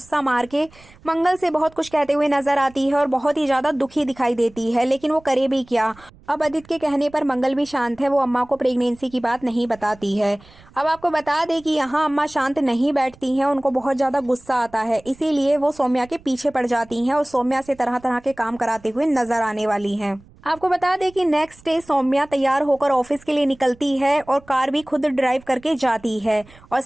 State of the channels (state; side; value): noise; right; rumble, 25 dB below the sound